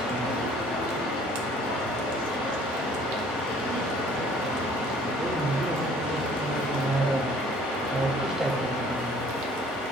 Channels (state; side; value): normal; both; correlation 0.55